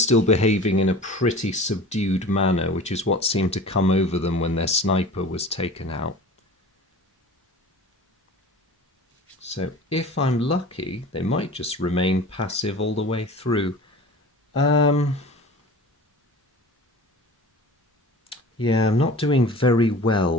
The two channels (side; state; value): both; normal; correlation 0.39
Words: behaving in a pretty subdued manner, which is what seemed to come over them when their sniper was taken out. So if I'm lucky, they might just remain passive all the way through. Yeah, I'm not doing very